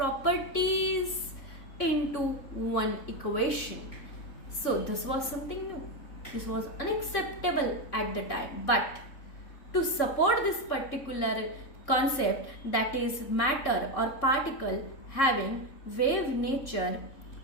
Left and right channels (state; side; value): late; right; 3.6 ms